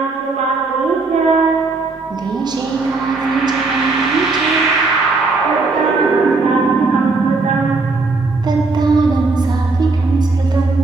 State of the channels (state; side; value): quieter; left; 3.7 dB